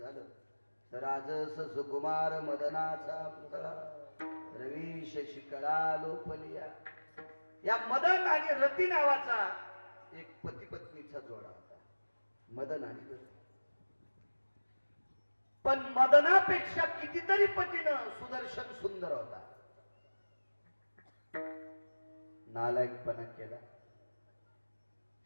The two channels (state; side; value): inverted; both; correlation -1.00